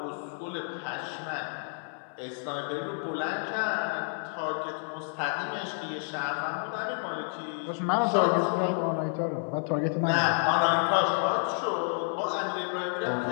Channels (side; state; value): right; silent; 58 dB below the other